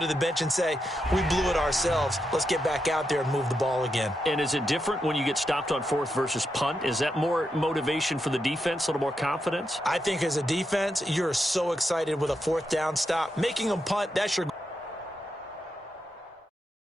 the bench and say, we blew it ourselves, let's get back out there and move the ball again? And is it different when you get stopped on 4th versus punt? Is that more motivation for the defense, a little more confidence? I think as a defense, you're so excited with a 4th down stop. Making them punt, that's your...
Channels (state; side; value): normal; both; correlation 0.85